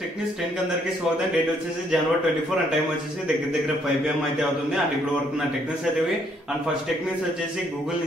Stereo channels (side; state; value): both; normal; correlation 0.69